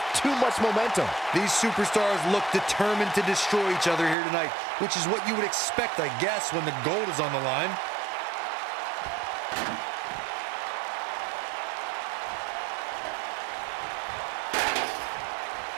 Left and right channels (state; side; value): drops out; left; at 4.2 s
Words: too much momentum. These superstars look determined to destroy each other here tonight, which is what you would expect, I guess, when the gold is on the line.